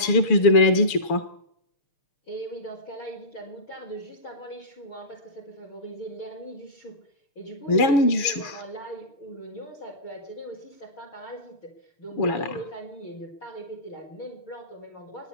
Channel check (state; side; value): late; right; 6.6 ms